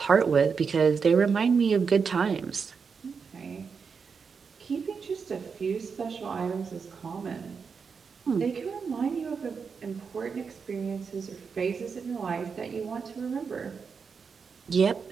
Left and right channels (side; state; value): left; quieter; 5.7 dB